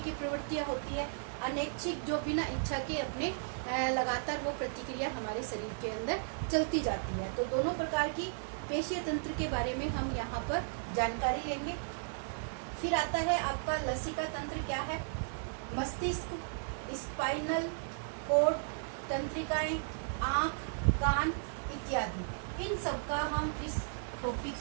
प्रवृत्तियां होती है, अनैच्छिक जो बिना इच्छा के अपने लगातार वो प्रतिक्रिया हमारे शरीर के अंदर चलती जाती है। तो दोनों प्रकार की पेशीय तंत्र के बारे में हम यहाँ पर जानकारी लेंगे। फिर आता है आपका लसिका तंत्र। क्या है? मस्तिष्क, स्पाइनल कोड, तंत्रिकाएं, आंख, कान इत्यादि, इन सब का हम इस टॉपिक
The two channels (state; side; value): silent; left; digital silence